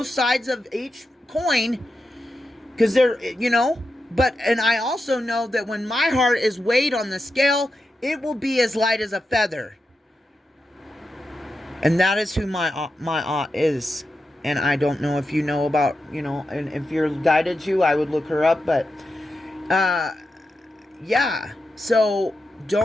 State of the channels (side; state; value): both; normal; correlation 0.89